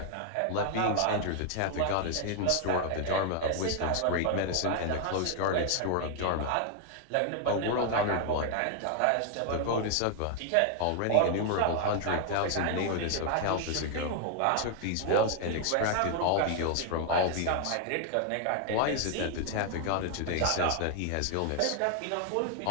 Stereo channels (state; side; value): different; both; correlation 0.00